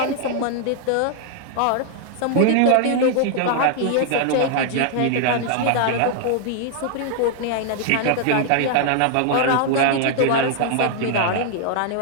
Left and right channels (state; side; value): different; both; correlation 0.00